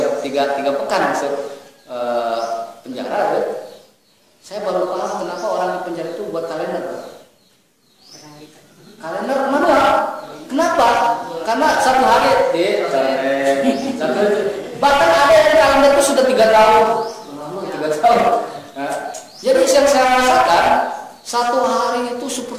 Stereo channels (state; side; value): identical; both; correlation 1.00